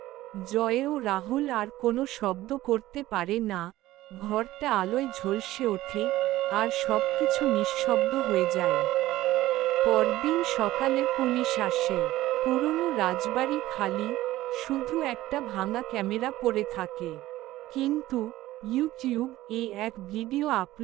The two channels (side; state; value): left; quieter; 16.0 dB